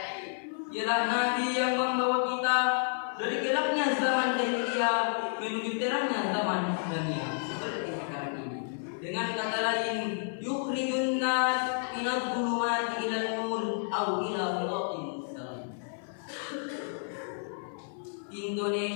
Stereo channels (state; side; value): silent; right; 57 dB below the other